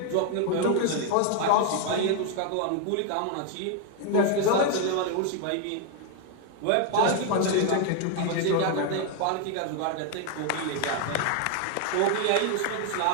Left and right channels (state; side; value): different; both; correlation 0.00